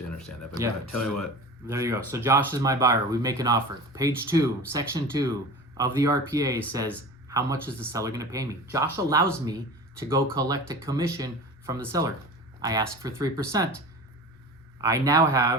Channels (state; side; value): normal; both; correlation 0.35